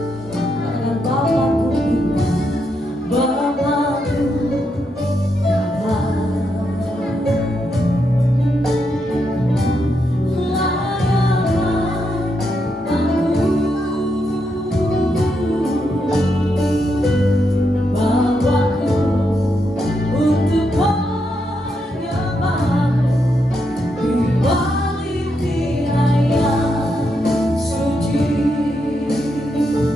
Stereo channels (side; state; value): both; normal; correlation 0.81